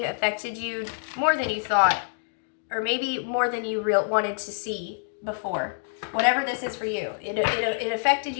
affected you more than you thought, or maybe more than you wanted to see before. Whatever this is for you, it affected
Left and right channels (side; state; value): right; silent; digital silence